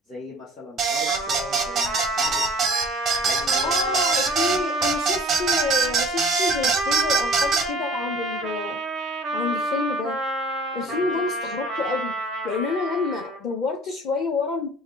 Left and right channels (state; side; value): normal; both; correlation 0.49